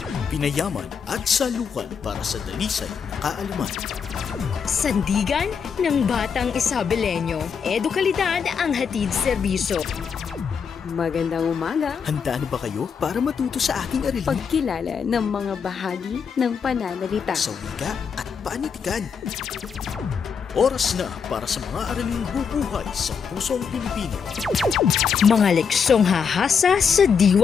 pinayaman at salukan para sa dalisay na kaalaman. Sandigan ng Batang Isabelenyo. Edukalidad ang hatid serbisyo. Magandang umaga. Handa na ba kayo para matuto sa aking aralin Pagkilala ng mga bahagi ng pananalita. sa wika at panitikan? Oras na para sa mga araling bubuhay sa pusong Pilipino. Mga leksyong hahasa sa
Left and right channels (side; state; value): right; quieter; 6.5 dB